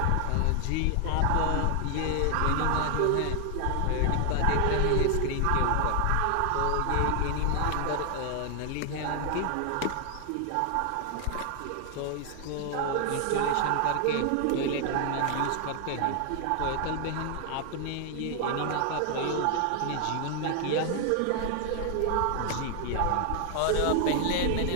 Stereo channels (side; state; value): both; different; correlation 0.00